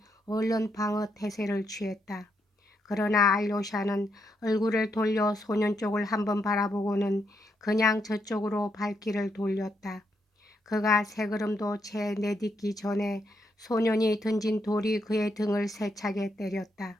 얼른 방어 태세를 취했다. 그러나 알료샤는 얼굴을 돌려 소년 쪽을 한번 바라보고는 그냥 저쪽으로 발길을 돌렸다. 그가 세 걸음도 채 내딛기 전에 소년이 던진 돌이 그의 등을 세차게 때렸다.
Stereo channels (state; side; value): normal; both; correlation 0.79